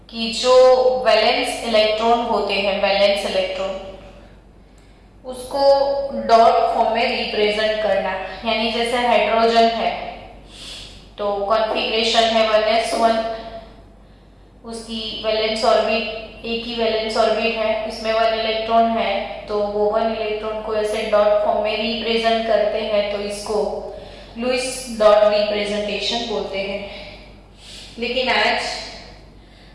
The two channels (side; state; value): both; identical; correlation 1.00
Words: कि जो वैलेंस इलेक्ट्रॉन होते हैं, वैलेंस इलेक्ट्रॉन, उसको डॉट फॉर्म में रिप्रेजेंट करना। यानी जैसे हाइड्रोजन है तो कॉन्फ़िगरेशन है 1s1, उसकी वैलेंस ऑर्बिट एक ही वैलेंस ऑर्बिट है, उसमें 1 इलेक्ट्रॉन है, तो वो 1 इलेक्ट्रॉन को ऐसे डॉट फॉर्म में रिप्रेजेंट करते हैं, तो इसको लुईस डॉट रिप्रेजेंटेशन बोलते हैं। लेकिन आज